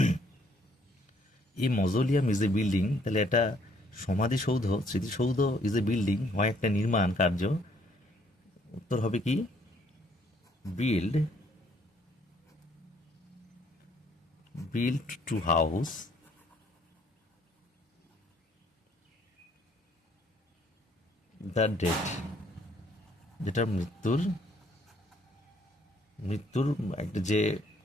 এই মজোলিয়াম ইজ এ বিল্ডিং, তাহলে এটা সমাধিসৌধ, স্মৃতিসৌধ ইজ এ বিল্ডিং হয় একটা নির্মাণ কার্য। উত্তর হবে কি, build to house the dead, যেটা মৃত্যুর একটা যে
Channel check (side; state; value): both; normal; correlation 0.65